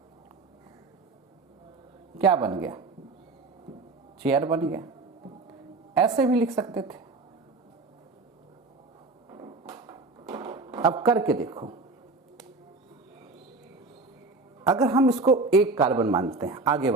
क्या बन गया, चेयर बन गया। ऐसे भी लिख सकते थे, अब करके देखो। अगर हम इसको एक कार्बन मानते हैं, आगे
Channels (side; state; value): left; quieter; 3.7 dB